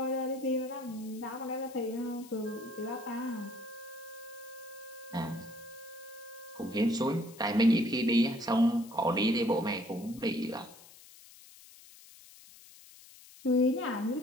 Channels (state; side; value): noise; left; hiss, 21 dB below the sound